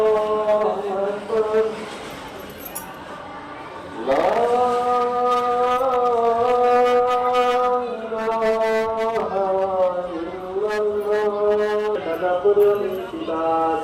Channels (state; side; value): identical; both; correlation 1.00